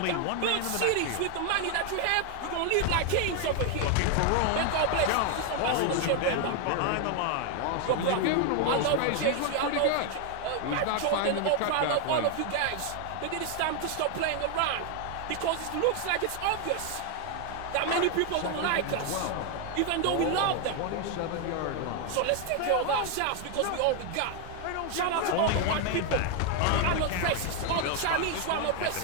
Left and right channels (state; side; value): different; both; correlation 0.01